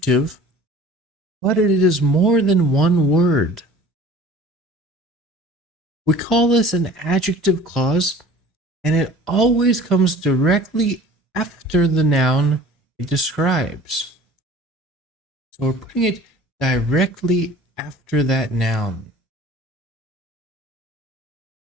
but it is more than one word. We call this an adjective clause, and it always comes directly after the noun it describes. So we're putting it directly after that noun.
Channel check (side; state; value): both; normal; correlation 0.46